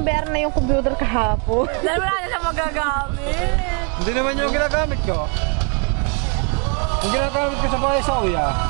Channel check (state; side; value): quieter; left; 36.7 dB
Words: bayaran na yung computer kahapon. Dahil wala na siya magagamit. Hindi naman yung ginagamit ko. Yung ginagamit ko sa bahay sa uya.